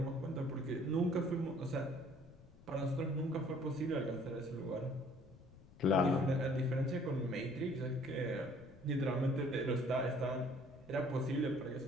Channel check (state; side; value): noise; left; rumble, 23 dB below the sound